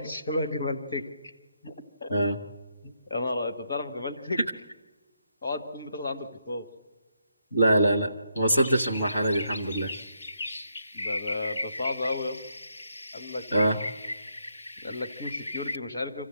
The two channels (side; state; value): both; inverted; correlation -0.78